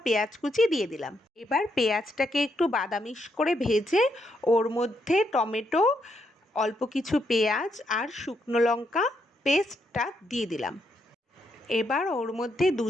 পেঁয়াজ কুচি দিয়ে দিলাম। এবার পেঁয়াজটাকে একটু বাদামিশ করে ভেজে ওর মধ্যে টমেটো, অল্প কিছু পেঁয়াজ আর শুকনো লঙ্কা পেস্টটা দিয়ে দিলাম। এবার ওর মধ্যে 2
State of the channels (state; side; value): normal; both; correlation 0.78